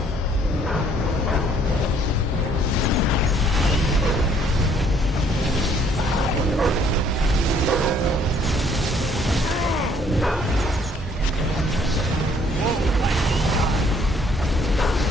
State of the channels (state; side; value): normal; both; correlation 0.62